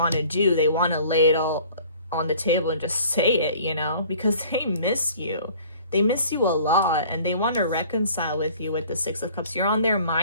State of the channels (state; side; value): inverted; both; correlation -0.51